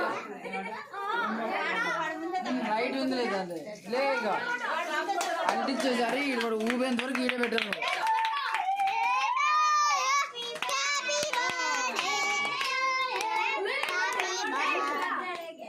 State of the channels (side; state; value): both; identical; correlation 1.00